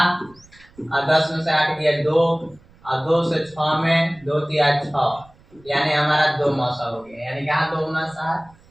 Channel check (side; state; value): right; noise; rumble, 27 dB below the sound